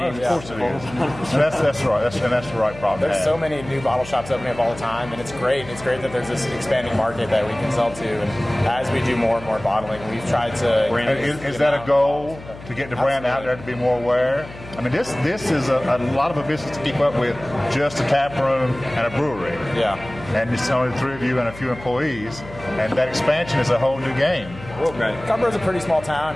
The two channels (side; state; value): left; noise; hum, 16 dB below the sound